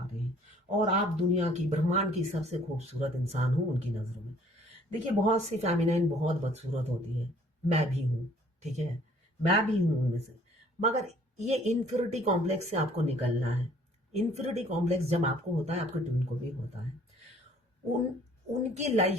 रहे हैं, और आप दुनिया की ब्रह्मांड की सबसे खूबसूरत इंसान हो उनकी नजरों में। देखिए बहुत सी फेमिनाइन बहुत बदसूरत होती है, मैं भी हूँ, ठीक है, मैं भी हूँ उनमें से, मगर ये इन्फिनिटी कॉम्प्लेक्स से आपको निकलना है। इन्फिनिटी कॉम्प्लेक्स जब आपको होता है, आपके ट्विन को भी होता है। उनकी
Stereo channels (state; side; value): normal; both; correlation 0.58